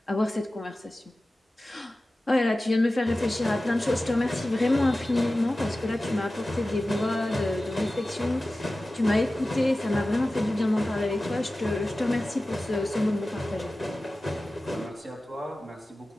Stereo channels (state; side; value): normal; both; correlation 0.96